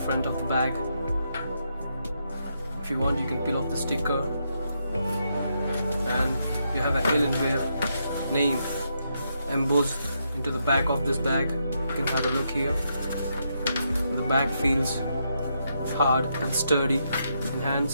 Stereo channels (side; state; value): both; inverted; correlation -0.80